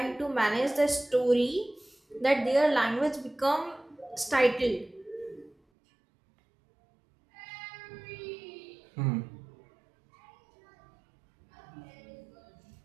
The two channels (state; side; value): drops out; left; at 5.6 s